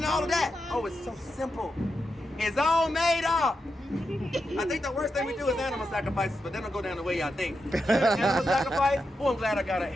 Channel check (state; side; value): normal; both; correlation 0.87